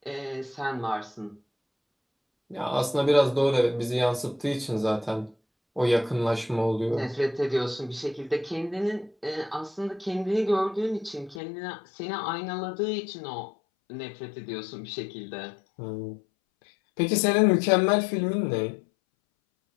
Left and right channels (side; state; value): right; drops out; at 11.4 s